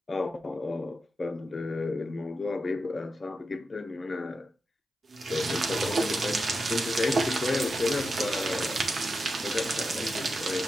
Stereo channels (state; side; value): normal; both; correlation 0.88